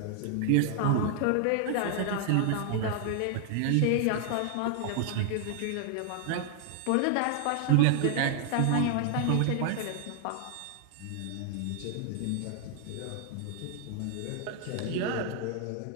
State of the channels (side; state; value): both; different; correlation 0.00